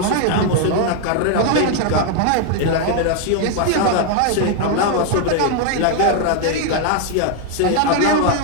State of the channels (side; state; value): both; different; correlation 0.00